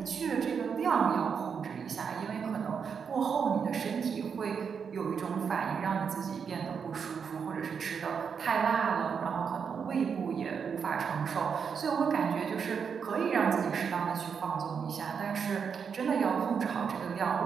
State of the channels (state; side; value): quieter; left; 6.5 dB